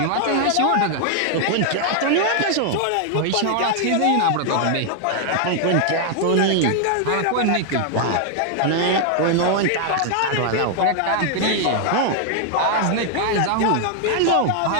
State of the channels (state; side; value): different; both; correlation 0.00